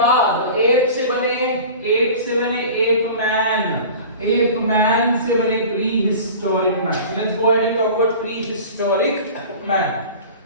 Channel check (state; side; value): inverted; both; correlation -0.39